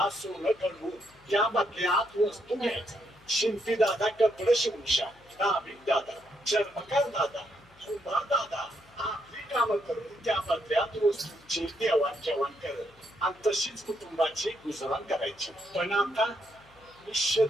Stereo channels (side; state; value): left; noise; hum, 28 dB below the sound